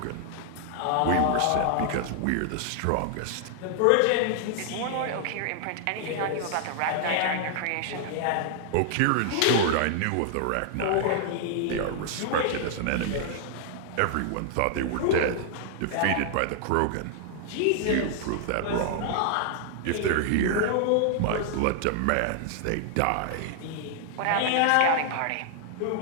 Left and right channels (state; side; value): different; both; correlation -0.01